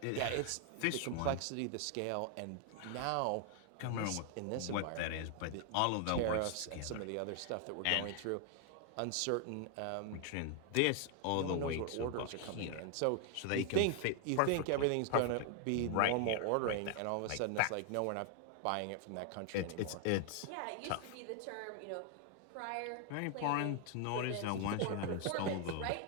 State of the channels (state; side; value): different; both; correlation 0.00